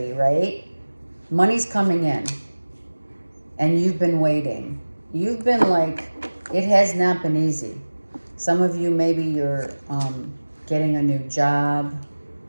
right? Money's coming in. And you've been waiting. You've been like, it has not been easy. Some of you, maybe you're getting a new job.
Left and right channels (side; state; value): both; inverted; correlation -1.00